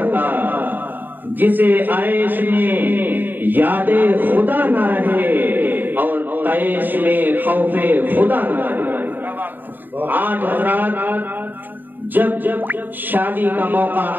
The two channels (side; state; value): left; late; 0.091 ms